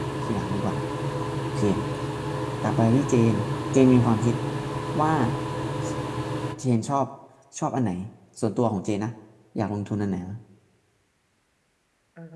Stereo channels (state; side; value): identical; both; correlation 1.00